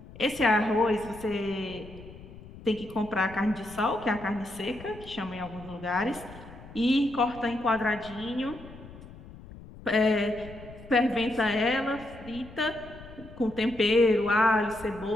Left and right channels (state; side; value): noise; left; rumble, 17 dB below the sound